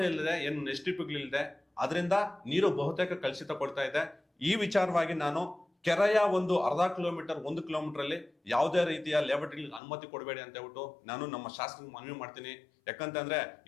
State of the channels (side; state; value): right; drops out; at 9.8 s